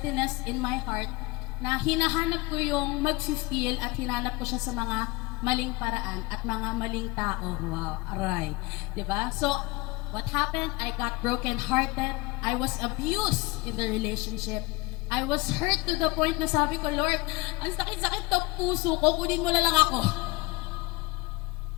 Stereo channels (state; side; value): quieter; right; 23.0 dB